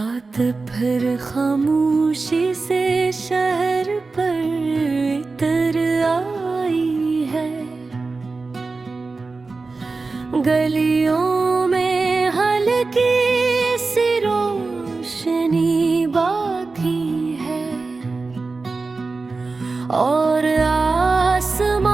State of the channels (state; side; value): quieter; left; 3.9 dB